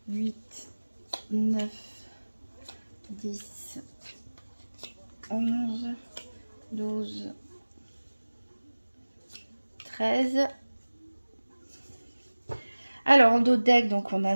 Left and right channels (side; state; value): both; inverted; correlation -1.00